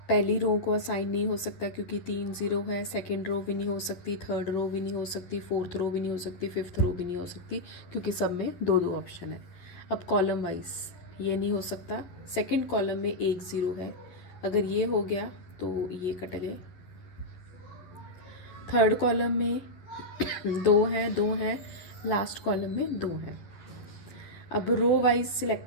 पहली रो को असाइन नहीं हो सकता क्योंकि 3 0 है, सेकंड रो भी नहीं हो सकती, थर्ड रो भी नहीं हो सकती, फोर्थ रो भी नहीं हो सकती, फिफ्थ रो भी नहीं हो सकती क्योंकि सब में 2 2 ऑप्शन है। अब कॉलम वाइज ये नहीं हो सकता, सेकंड कॉलम में 1 0 है, अगर ये हो गया तो ये कट गए। थर्ड कॉलम में 2 है, लास्ट कॉलम में 2 है। अब रो वाइज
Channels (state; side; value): late; right; 11 ms